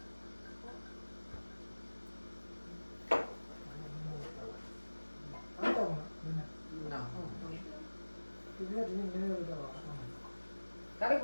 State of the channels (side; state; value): both; inverted; correlation -1.00